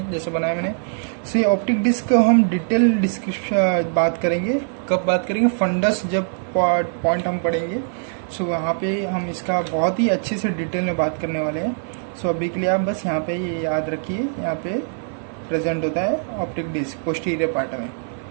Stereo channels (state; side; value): silent; left; 60 dB below the other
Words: जैसे बनाया मैंने। सो ये ऑप्टिक डिस्क को हम डिटेल डिस्क्रिप्शन बात करेंगे। कब बात करेंगे? फंडस जब पॉइंट हम पढ़ेंगे, सो वहाँ पे हम इसका बहुत ही अच्छे से डिटेल में बात करने वाले हैं। सो अभी के लिए आप बस यहाँ पे ये याद रखिए, यहाँ पे प्रेजेंट होता है ऑप्टिक डिस्क पोस्टीरियर पार्ट में।